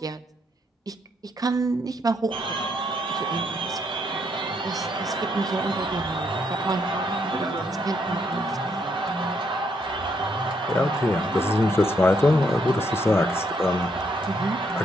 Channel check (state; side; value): normal; both; correlation 0.74